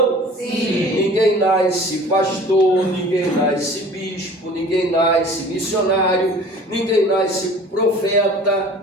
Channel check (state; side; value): normal; both; correlation 0.46